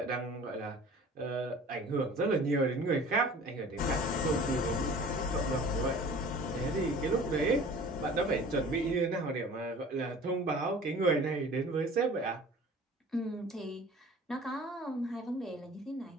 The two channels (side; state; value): both; normal; correlation 0.45